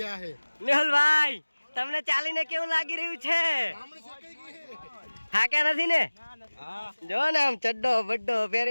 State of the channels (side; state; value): both; inverted; correlation -1.00